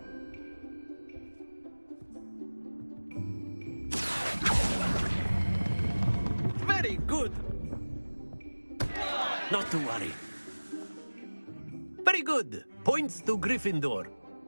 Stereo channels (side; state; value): both; inverted; correlation -1.00